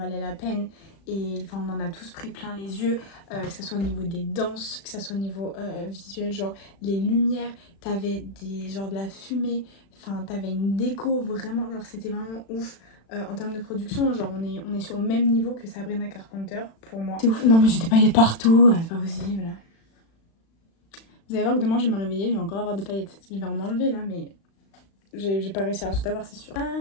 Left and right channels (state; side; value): late; right; 36 ms